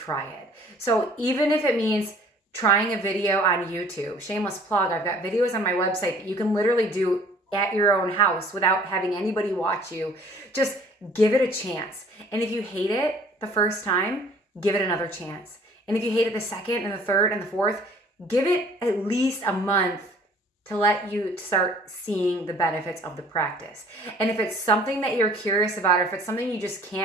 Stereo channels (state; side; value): normal; both; correlation 0.53